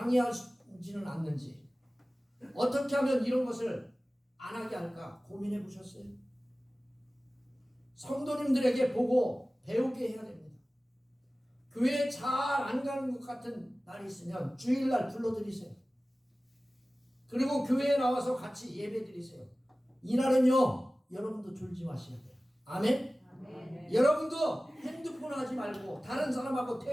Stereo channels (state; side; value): normal; both; correlation 0.97